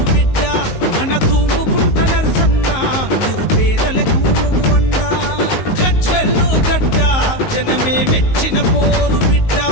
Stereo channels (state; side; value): late; right; 19 ms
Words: బిడ్డ మన తూముకుంట నరసన్న నిరుపేదలకు నువ్వు అండా. గజ్వెల్లు గడ్డ జనమే మెచ్చిన పోరు బిడ్డ